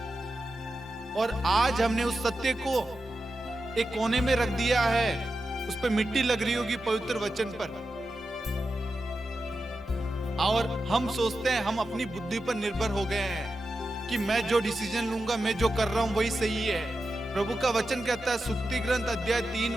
और आज हमने उस सत्य को एक कोने में रख दिया है, उस पर मिट्टी लग रही होगी पवित्र वचन पर, और हम सोचते हैं, हम अपनी बुद्धि पर निर्भर हो गए हैं कि मैं जो डिसीजन लूंगा, मैं जो कर रहा हूं वही सही है। प्रभु का वचन कहता है सुक्ति ग्रंथ अध्याय 3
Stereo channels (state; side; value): normal; both; correlation 0.91